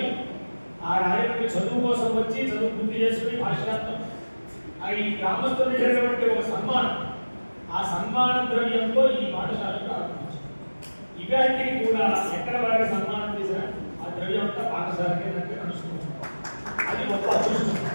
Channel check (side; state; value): both; inverted; correlation -1.00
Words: ఆ రాజమండ్రి చదువు కోసం వచ్చి చదువు పూర్తి చేసుకుని భాషాంతం ఈ గ్రామస్తులు చేసినటువంటి ఒక సన్మానం, ఆ సన్మాన ద్రవ్యంతో ఈ పాఠశాలను ప్రారంభించారు. ఇవాటికి కూడా ఎక్కడ వారికి సన్మానం చేసినా ఆ ద్రవ్యం అంతా పాఠశాలకే నడుచుకుంటారు. అది గొప్ప అదృష్టం.